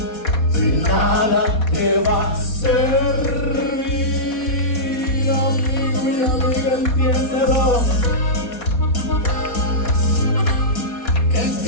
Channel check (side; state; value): right; late; 4.2 ms